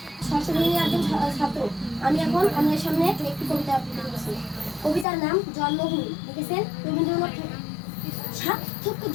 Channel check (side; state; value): right; drops out; at 5.1 s